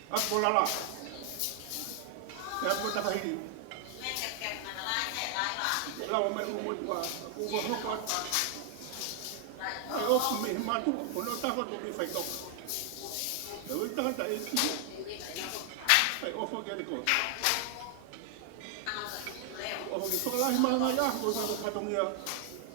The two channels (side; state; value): both; different; correlation 0.00